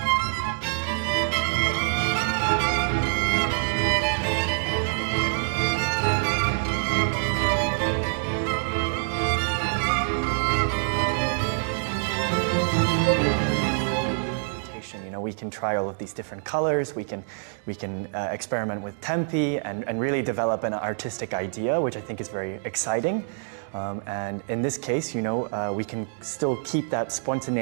We can try all of these different colors, we can experiment with tempi and really develop an artistic idea, which I think is very exciting. And in this case, you know, we can still keep that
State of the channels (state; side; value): silent; left; digital silence